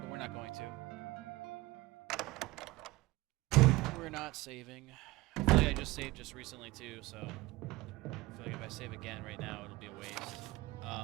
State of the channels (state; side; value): quieter; left; 20.4 dB